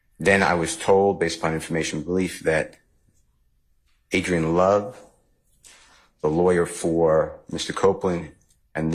Then I was told, based upon information belief, that Adrian Love, the lawyer for Mr. Copeland, and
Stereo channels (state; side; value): identical; both; correlation 1.00